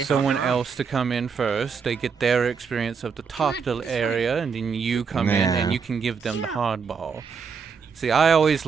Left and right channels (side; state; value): left; quieter; 5.9 dB